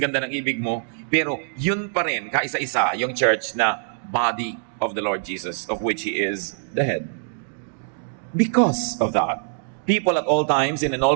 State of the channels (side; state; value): left; silent; digital silence